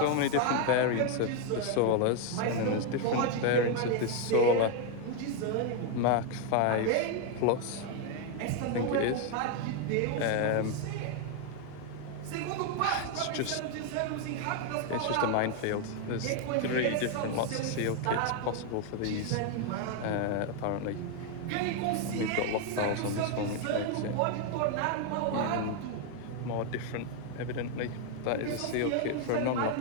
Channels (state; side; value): different; both; correlation 0.01